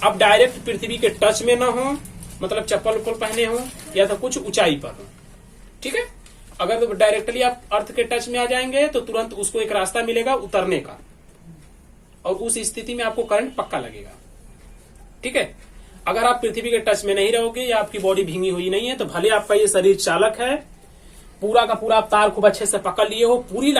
आप डायरेक्ट पृथ्वी के टच में ना हो, मतलब चप्पल उप्पल पहने हो या तो कुछ ऊंचाई पर हो। ठीक है। अगर तो डायरेक्टली आप अर्थ के टच में आ जाएंगे तो तुरंत उसको एक रास्ता मिलेगा उतरने का, और उस स्थिति में आपको करंट पक्का लगेगा। ठीक है। अगर आप पृथ्वी के टच में नहीं रहोगे या आपकी बॉडी भींगी हुई नहीं है, तो भले आपका ये शरीर चालक है, पूरा का पूरा आप तार खूब अच्छे से पकड़ लिए हो, पूरी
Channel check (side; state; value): both; identical; correlation 1.00